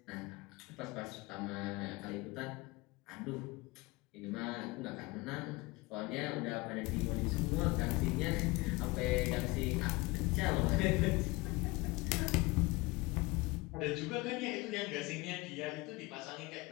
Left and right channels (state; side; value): quieter; right; 23.3 dB